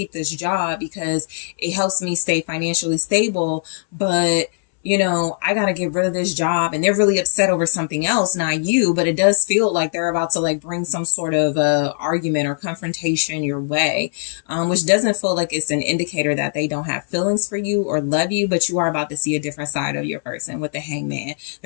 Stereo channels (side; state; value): right; silent; 66 dB below the other